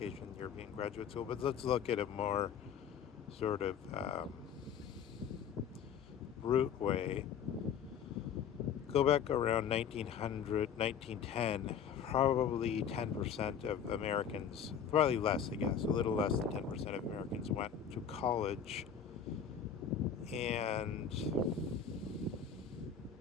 in European graduate school. But let's look at a more sort of root way. Go back around 1900, 1910, probably 10% of Americans, probably less, I guess, a little less than 10% of Americans went to college. And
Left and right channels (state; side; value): quieter; right; 7.7 dB